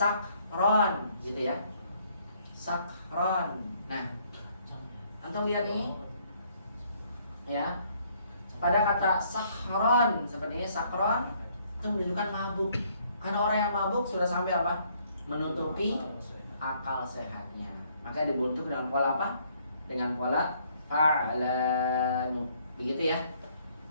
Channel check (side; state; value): both; inverted; correlation -0.66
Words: gitu ya. Sakron. Nah, antum lihat nih. Ya. Pada kata sakron seperti ini sakron itu menunjukkan mabuk. Karena orang yang mabuk sudah sampai apa? Menutupi akal sehatnya. Maka dibentuk dengan pola apa? Dengan pola fa'lanu. Begitu ya.